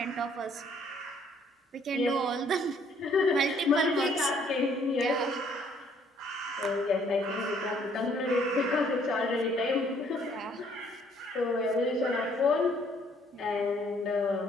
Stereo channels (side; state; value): both; normal; correlation 0.63